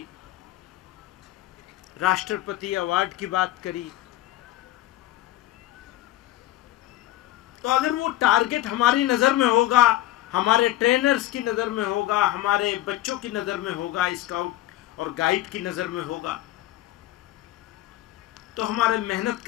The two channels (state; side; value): quieter; right; 15.1 dB